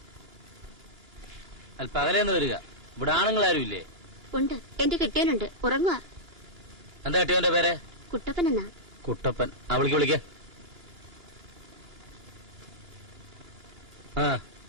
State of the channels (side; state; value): left; late; 2.9 ms